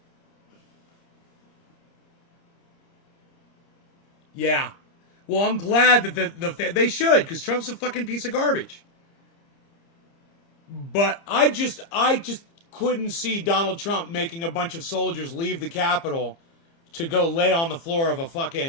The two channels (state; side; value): late; right; 30 ms